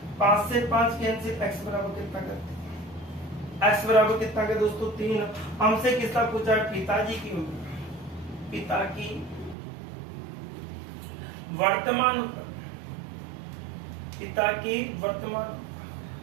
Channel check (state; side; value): drops out; left; at 9.6 s